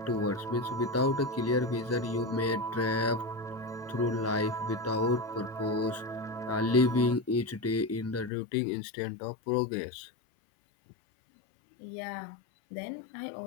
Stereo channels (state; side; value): drops out; right; at 8.3 s